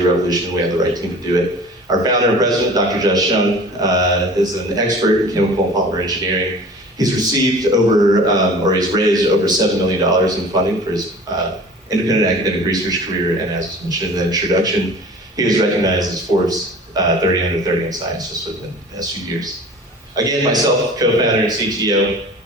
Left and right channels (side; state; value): both; normal; correlation 0.42